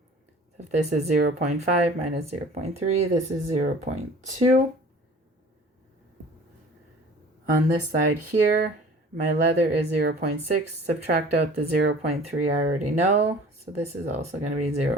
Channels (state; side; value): normal; both; correlation 0.46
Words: So if this is 0.5 minus 0.3, this is 0.2. On this side here, my leather is 0.6. Subtract out the 0.3 I already know. So this is also going to be